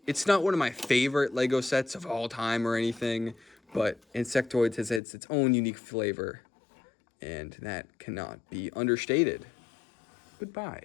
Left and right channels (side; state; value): right; drops out; at 5.0 s